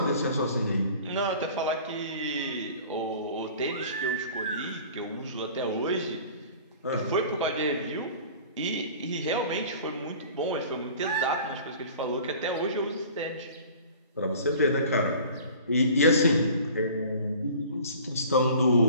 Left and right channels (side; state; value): both; inverted; correlation -0.45